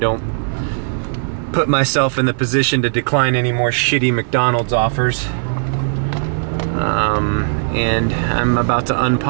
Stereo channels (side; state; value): left; silent; digital silence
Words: put myself in the position to decline any more shitty McDonald's offers. And I'm about to